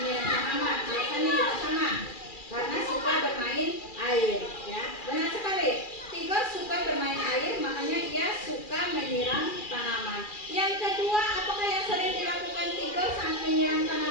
tanaman. Biasanya juga sama. Karena suka bermain air, ya. Benar sekali. Tigor suka bermain air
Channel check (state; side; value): late; right; 2.4 ms